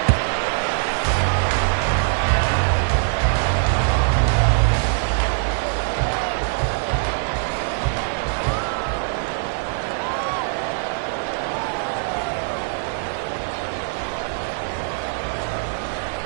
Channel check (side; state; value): left; silent; digital silence